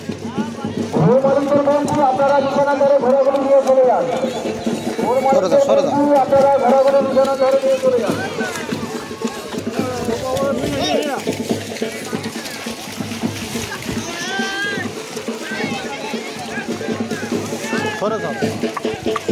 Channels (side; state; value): both; identical; correlation 1.00